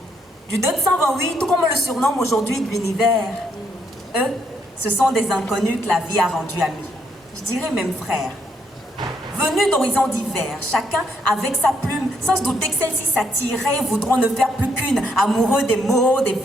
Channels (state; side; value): normal; both; correlation 0.74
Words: du 228, tout comme on le surnomme aujourd'hui de l'univers. Eux, ce sont des inconnus que la vie a rendus amis. Je dirais même frères. Venus d'horizons divers, chacun avec sa plume, sans se douter que celle-ci s'attirait, voudront ne faire plus qu'une. Amoureux des mots, des